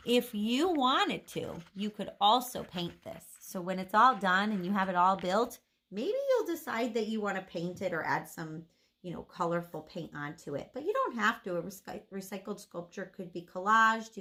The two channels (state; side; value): identical; both; correlation 1.00